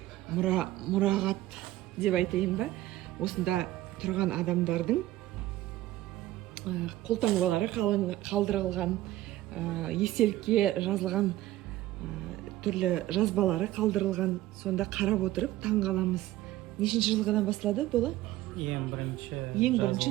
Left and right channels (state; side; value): quieter; left; 15.6 dB